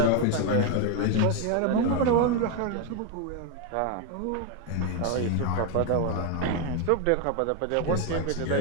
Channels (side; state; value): both; different; correlation 0.01